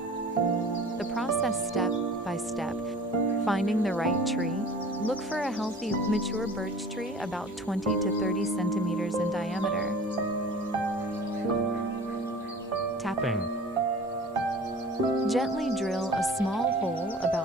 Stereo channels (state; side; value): normal; both; correlation 0.43